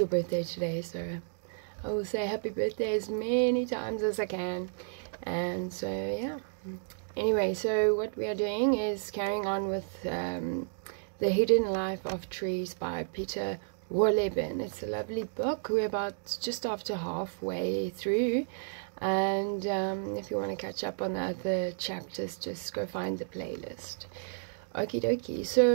birthday today, so I will say happy birthday as many times as I can. And so yeah. Anyway, so what we are doing is carrying on with The Hidden Life of Trees by Peter Wohlleben. It's a lovely book. We're about just after halfway through. And if you want to catch up on the other chapters, just go find the playlist. Okie dokie.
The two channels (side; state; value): left; silent; digital silence